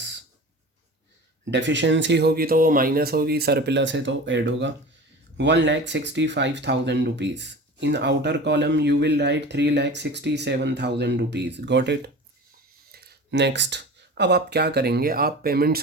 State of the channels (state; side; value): normal; both; correlation 0.36